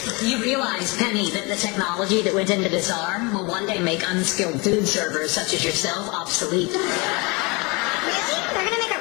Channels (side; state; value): right; quieter; 27.8 dB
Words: You realize, Penny, that the technology that went into this arm will one day make unskilled food servers such as yourself obsolete. Really? They're gonna make a